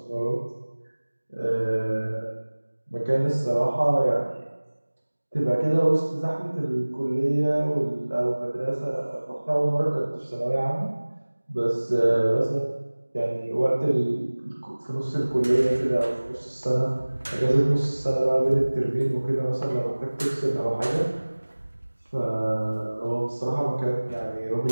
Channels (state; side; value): inverted; both; correlation -1.00